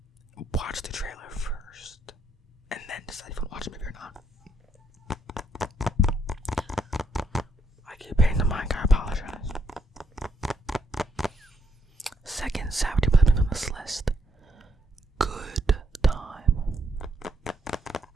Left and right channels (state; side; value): normal; both; correlation 0.74